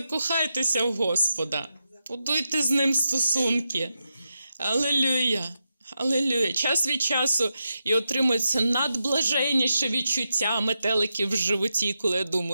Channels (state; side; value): inverted; both; correlation -0.87